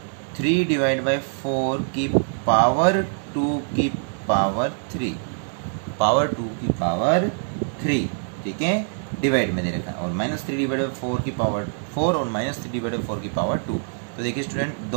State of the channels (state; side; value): silent; left; digital silence